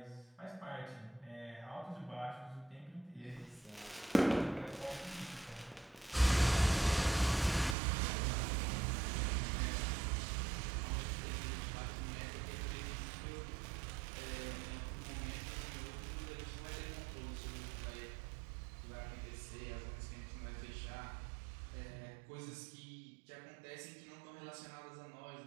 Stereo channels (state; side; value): drops out; left; at 7.8 s